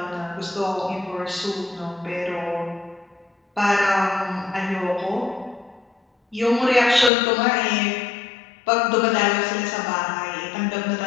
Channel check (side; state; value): right; drops out; at 7.1 s